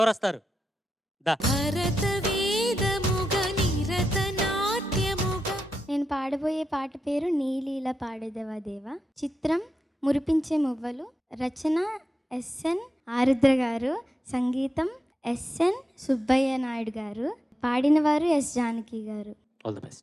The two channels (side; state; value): both; normal; correlation 0.87